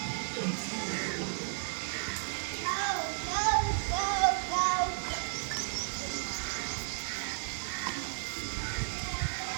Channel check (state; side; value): silent; left; digital silence